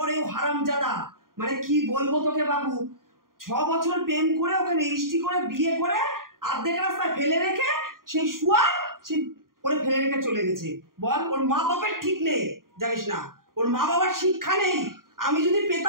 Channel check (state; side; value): late; left; 0.91 ms